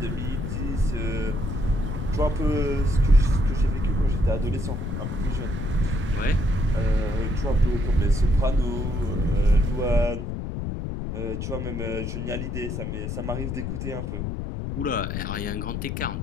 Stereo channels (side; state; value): left; noise; rumble, 3 dB below the sound